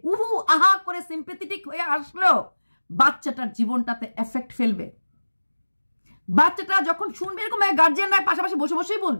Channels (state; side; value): inverted; both; correlation -1.00